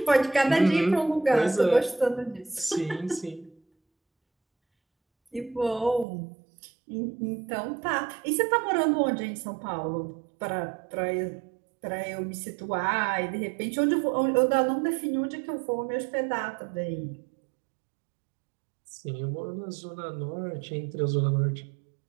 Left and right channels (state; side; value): drops out; left; at 6.1 s